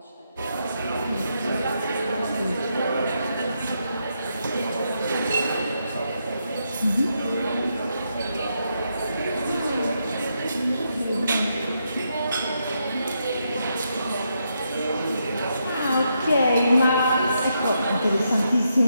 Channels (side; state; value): both; inverted; correlation -0.81